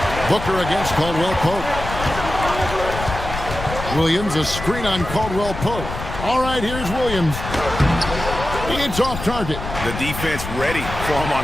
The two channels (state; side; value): noise; left; rumble, 8 dB below the sound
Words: Booker against Caldwell Pope. Williams, a screen on Caldwell Pope. All right, here's Williams. It's off target. The defense ready for him